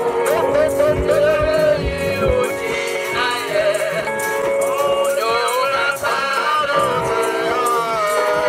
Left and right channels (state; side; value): identical; both; correlation 1.00